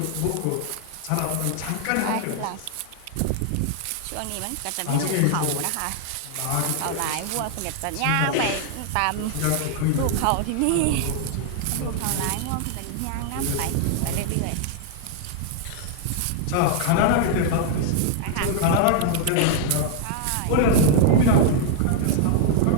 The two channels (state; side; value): different; both; correlation 0.00